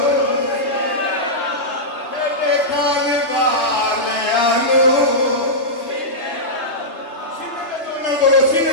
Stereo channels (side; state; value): right; late; 3.1 ms